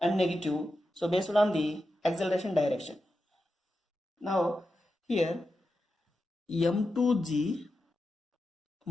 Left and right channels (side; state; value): both; normal; correlation 0.90